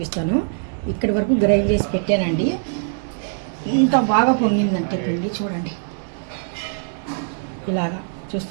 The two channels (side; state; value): left; silent; 64 dB below the other